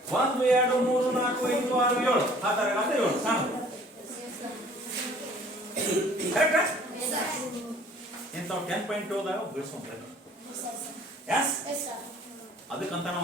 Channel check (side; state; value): both; normal; correlation 0.53